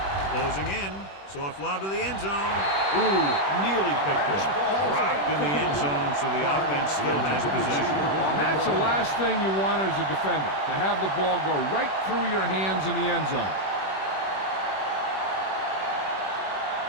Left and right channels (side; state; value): right; late; 21 ms